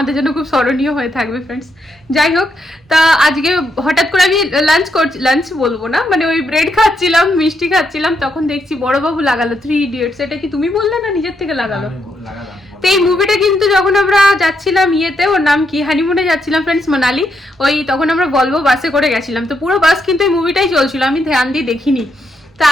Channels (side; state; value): both; normal; correlation 0.79